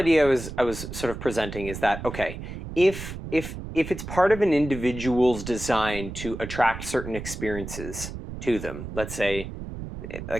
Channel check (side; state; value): right; noise; rumble, 9 dB below the sound